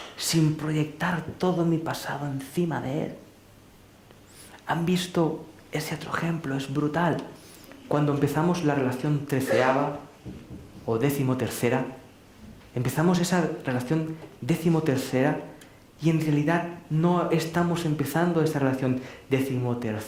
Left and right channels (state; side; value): identical; both; correlation 1.00